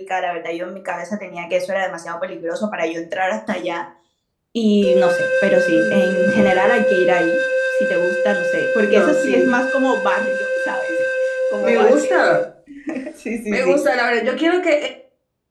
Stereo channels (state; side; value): identical; both; correlation 1.00